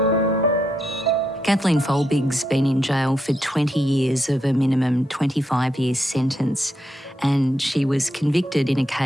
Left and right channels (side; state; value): both; normal; correlation 0.81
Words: Kathleen Folbig's been in jail for 20 years of a minimum 25-year sentence, and she was convicted in a